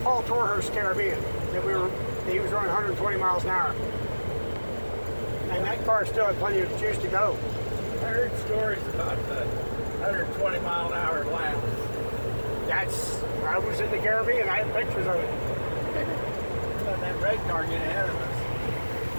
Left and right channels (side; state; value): both; inverted; correlation -1.00